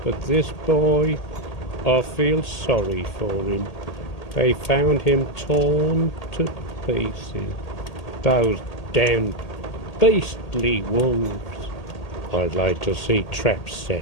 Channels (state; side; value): late; right; 1.8 ms